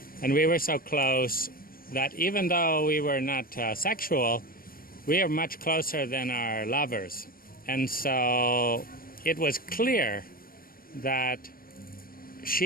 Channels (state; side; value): late; right; 0.42 ms